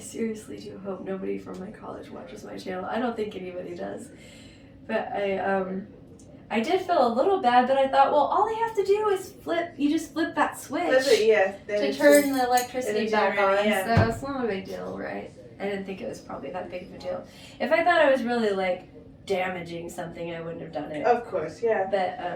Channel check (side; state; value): both; identical; correlation 1.00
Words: do hope nobody from my college watches my channel. I don't think anybody does. But I did feel a little bad, but I thought, well, all they have to do is you just flip that switch to turn the electricity back on. Yeah. So it's not a big deal, right? I didn't think it was probably that big of a deal. If I thought I was really like damaging something, I wouldn't have done it. Of course, yeah. But